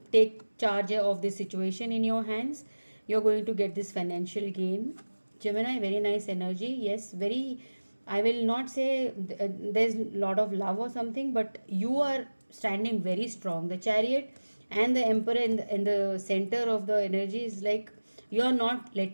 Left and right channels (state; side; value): inverted; both; correlation -1.00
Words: take charge of this situation in your hands, you're going to get this financial gain. Gemini, very nice energy. Yes, very, I will not say there's a lot of love or something, but you are standing very strong. The chariot and the emperor in the center of the energy is like you are not